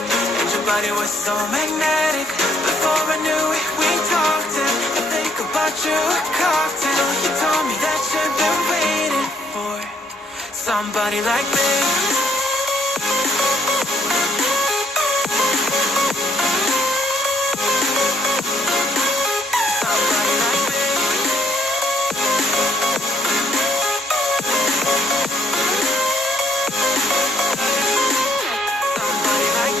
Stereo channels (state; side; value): normal; both; correlation 0.68